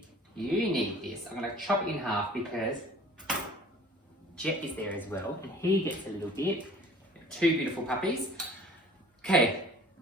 You need this. I'm going to chop it in half because Jet is there as well, and he gets a little bit. Two beautiful puppies. Okay,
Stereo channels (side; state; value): both; normal; correlation 0.48